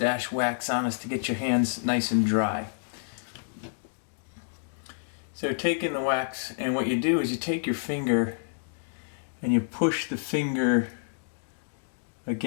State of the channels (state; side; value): silent; right; digital silence